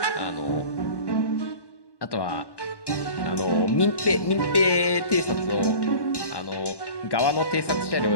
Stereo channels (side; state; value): right; late; 1.1 ms